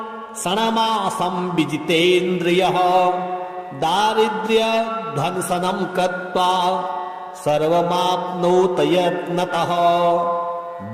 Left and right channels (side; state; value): both; identical; correlation 1.00